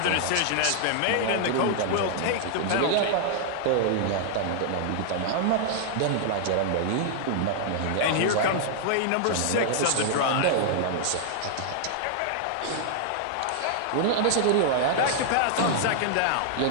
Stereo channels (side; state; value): both; different; correlation -0.01